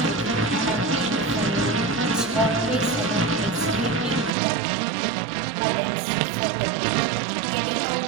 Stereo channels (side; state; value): left; drops out; at 4.4 s